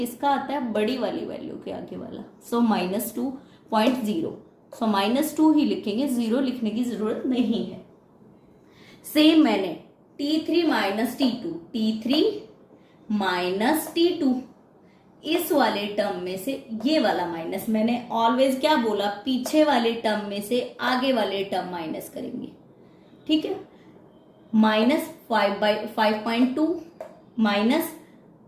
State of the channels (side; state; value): both; identical; correlation 1.00